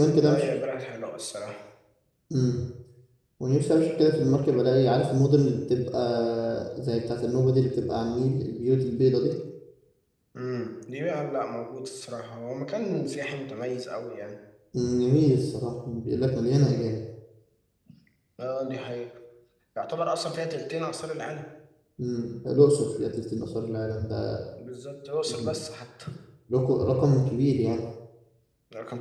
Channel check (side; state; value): both; identical; correlation 1.00